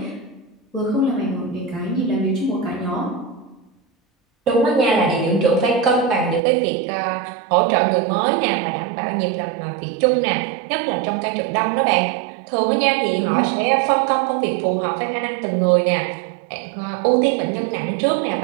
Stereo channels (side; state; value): left; drops out; at 6.4 s